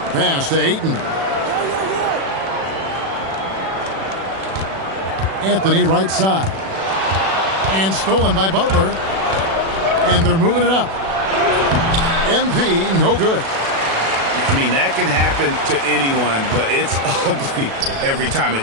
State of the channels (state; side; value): late; left; 36 ms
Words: Pass to Ayton. Anthony right side. And stolen by Butler. And they're moving it up. MP, no good. I mean, that can happen to anyone, but it's ugly every time it